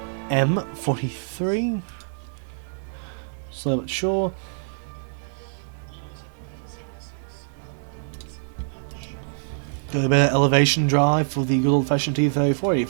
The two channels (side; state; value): left; silent; digital silence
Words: M43. Slow but sure. Got a bit of elevation drive for the good old fashioned